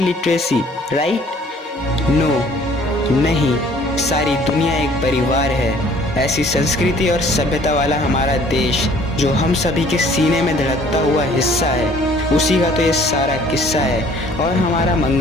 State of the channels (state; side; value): normal; both; correlation 0.56